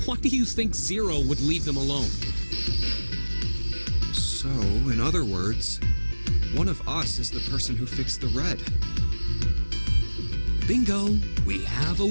Why do you think Zero would leave them alone? So, in other words, one of us is the person who fixed the red. Bingo! We have a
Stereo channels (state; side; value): inverted; both; correlation -1.00